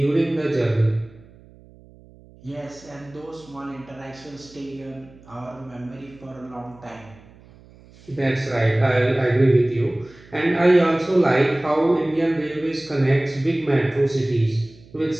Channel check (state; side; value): noise; right; hum, 24 dB below the sound